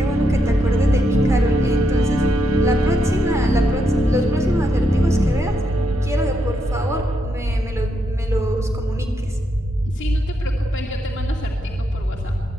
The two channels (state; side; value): normal; both; correlation 0.80